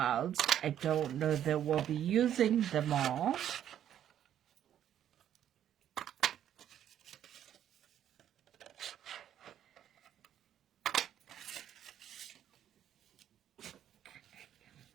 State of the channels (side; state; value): left; quieter; 10.5 dB